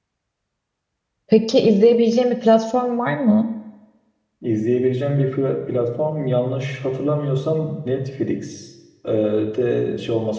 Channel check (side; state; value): both; identical; correlation 1.00